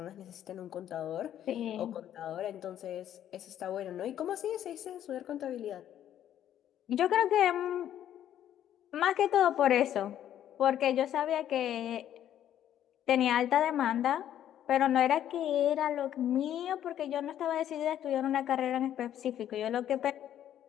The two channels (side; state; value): right; quieter; 11.0 dB